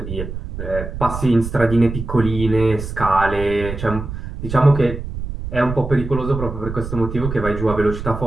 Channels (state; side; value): noise; right; rumble, 8 dB below the sound